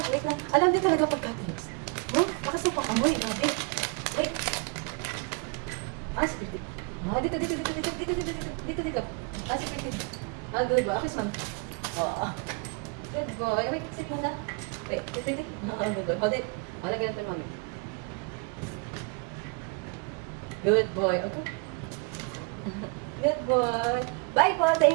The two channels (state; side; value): quieter; left; 33.7 dB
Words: wait lang. Alam niyo talaga pagka-close. Bakas na pang amoy. Grabe. Wait. Security. Dito. Security. Good boy. Akis, ma'am. Good boy. Wait, sit muna. Wait. Good boy. Hold it. Wala ganito, mami. Good boy. Okay. Good boy. Bye po.